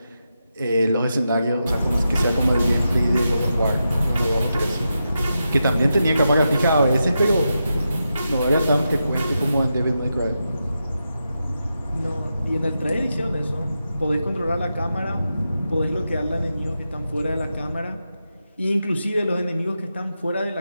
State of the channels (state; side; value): inverted; both; correlation -0.88